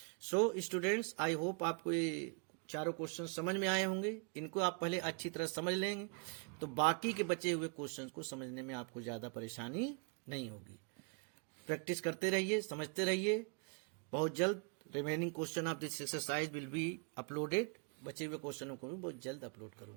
सो स्टूडेंट्स, आई होप आपको ये चारों क्वेश्चन समझ में आए होंगे। इनको आप पहले अच्छी तरह समझ लेंगे तो बाकी के बचे हुए क्वेश्चन को समझने में आपको ज्यादा परेशानी नहीं होगी। प्रैक्टिस करते रहिए, समझते रहिए। बहुत जल्द remaining question of this exercise will be uploaded. बचे हुए क्वेश्चनों को भी बहुत जल्द अपलोड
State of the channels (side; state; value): left; quieter; 37.1 dB